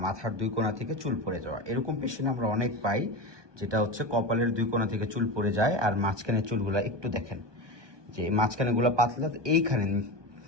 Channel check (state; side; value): late; left; 1.2 ms